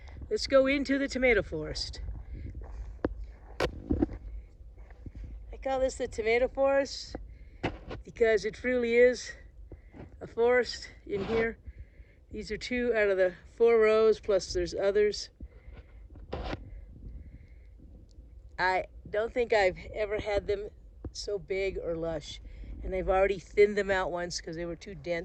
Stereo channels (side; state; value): both; identical; correlation 1.00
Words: Let's go into the tomato forest. I call this the tomato forest because it truly is a forest in here. These are 2 out of the 4 rows, plus there's others. I don't think I've ever had them so big or lush. And I've already thinned them out once because they were too